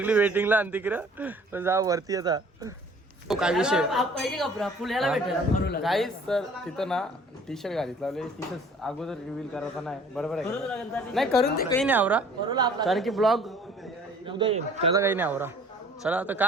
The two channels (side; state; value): both; normal; correlation 0.52